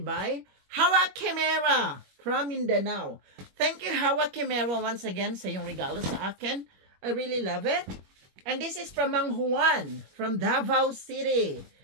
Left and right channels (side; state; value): left; late; 21 ms